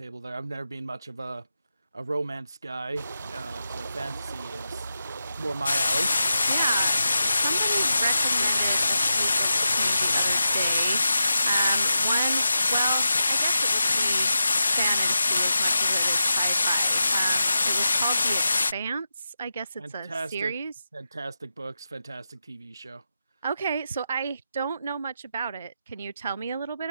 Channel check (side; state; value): both; inverted; correlation -0.90